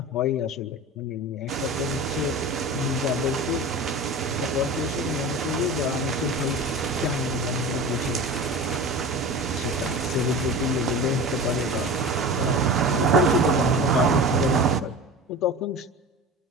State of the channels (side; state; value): both; normal; correlation 0.33